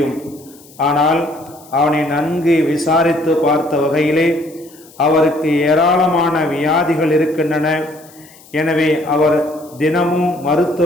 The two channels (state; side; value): noise; left; hiss, 24 dB below the sound